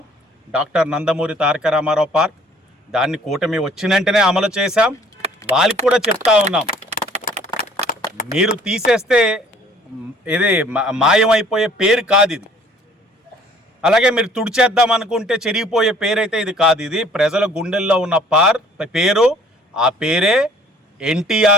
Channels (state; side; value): normal; both; correlation 0.55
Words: డాక్టర్ నందమూరి తారక రామారావు పార్క్, దాన్ని కూటమి వచ్చిన వెంటనే అమలు చేశాం. వాళ్ళకి కూడా చెప్తా ఉన్నాం, మీరు తీసేస్తే ఇది మాయమైపోయే పేరు కాదు ఇది. అలాగే మీరు తుడిచేద్దాం అనుకుంటే చెరిగిపోయే పేరైతే ఇది కాదు. ఇది ప్రజల గుండెల్లో ఉన్న పేరు. ఆ పేరే